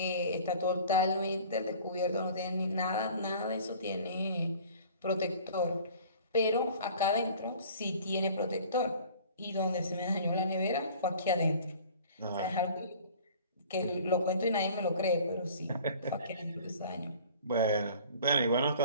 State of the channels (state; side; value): inverted; both; correlation -0.47